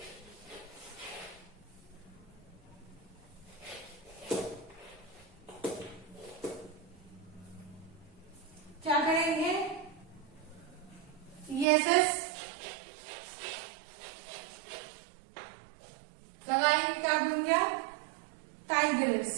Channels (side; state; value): left; drops out; at 11.7 s